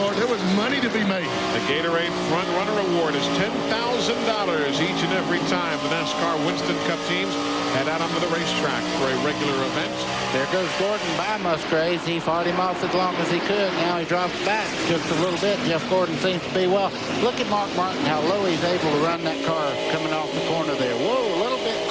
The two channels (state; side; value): identical; both; correlation 1.00